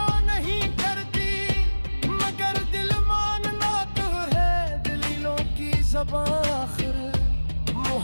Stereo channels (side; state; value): both; inverted; correlation -1.00